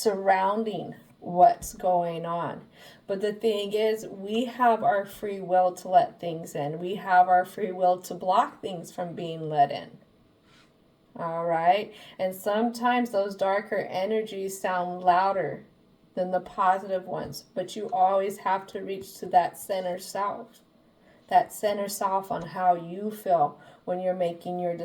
what's going on. But the thing is, we have our free will to let things in. We have our free will to block things from being let in. All right? And sometimes those darker energies sound louder than the positive ones, but you always have to reach to that center self. That center self on how you feel when you're making your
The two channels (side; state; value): both; identical; correlation 1.00